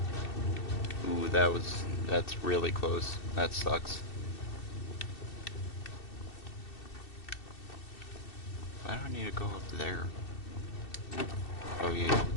Ooh, that's really close. That sucks. Why do I need to go up there? Oh yeah,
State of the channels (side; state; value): right; late; 2.7 ms